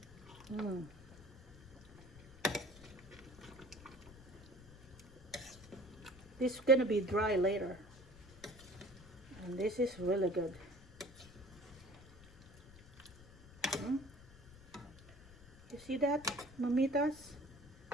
This is gonna be dry later. And this is really good. You see that, mamitas?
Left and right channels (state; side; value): noise; left; rumble, 20 dB below the sound